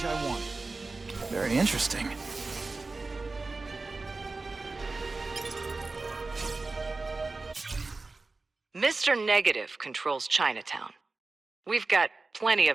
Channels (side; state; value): left; quieter; 3.6 dB